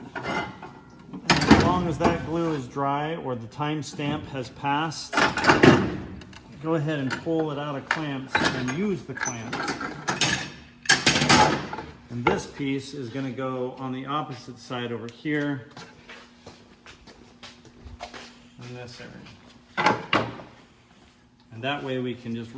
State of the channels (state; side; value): identical; both; correlation 1.00